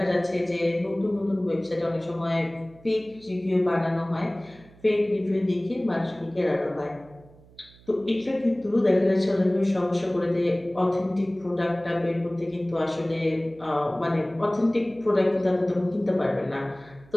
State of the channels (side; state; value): right; noise; hum, 25 dB below the sound